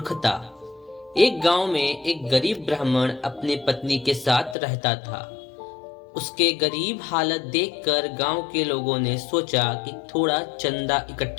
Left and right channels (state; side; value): drops out; right; at 4.5 s